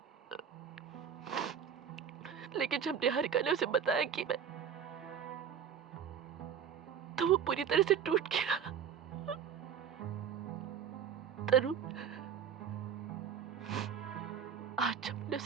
लेकिन जब निहारिका ने उसे बताया कि मैं, तो वो पूरी तरह से टूट गया। तरुण, आज जब मैंने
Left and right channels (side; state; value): left; quieter; 7.8 dB